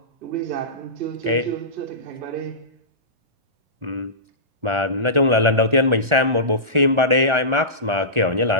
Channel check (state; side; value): late; left; 1.4 ms